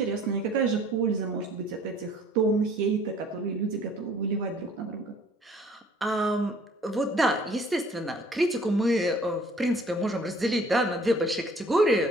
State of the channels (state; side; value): normal; both; correlation 0.55